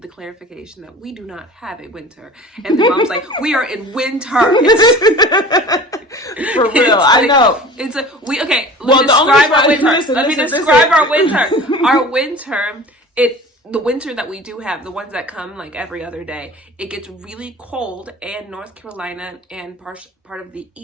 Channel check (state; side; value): normal; both; correlation 0.40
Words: the clarification that we do not have a winter. And the mom's like, we are in winter. For real, I know. It's like, let me Well, describe our winter. Let me listen. describe our winter. Our winter, the winter that we do have, the ones that come like every other day, it gets really cold, and North Carolina and part of the